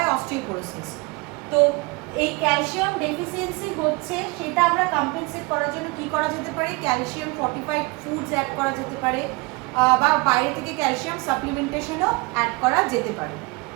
অস্টিওপোরোসিস। তো এই ক্যালসিয়াম ডেফিসিয়েন্সি হচ্ছে, সেটা আমরা কম্পেনসেট করার জন্য কি করা যেতে পারে? ক্যালসিয়াম ফর্টিফাইড ফুডস অ্যাড করা যেতে পারে, বা বাইরে থেকে ক্যালসিয়াম সাপ্লিমেন্টেশনও অ্যাড করা যেতে পারে।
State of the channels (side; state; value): left; quieter; 26.3 dB